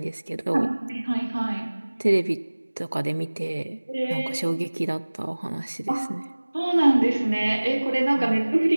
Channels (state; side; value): inverted; both; correlation -1.00